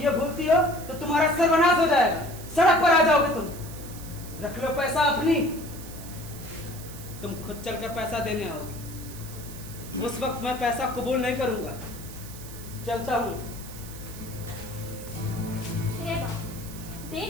ये भूलती हो तो तुम्हारा सर्वनाश हो जाएगा, सड़क पर आ जाओगे तुम। रख लो पैसा अपनी, तुम खुद चलकर पैसा देने आओगे। उस वक्त मैं पैसा कबूल नहीं करूंगा। चलता हूँ। हे बाप, दे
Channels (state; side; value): noise; right; hiss, 15 dB below the sound